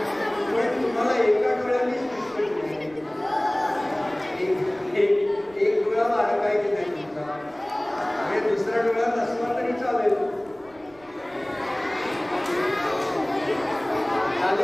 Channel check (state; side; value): noise; right; rumble, 27 dB below the sound